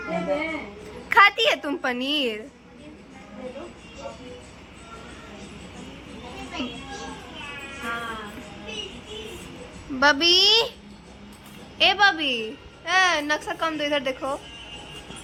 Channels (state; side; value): identical; both; correlation 1.00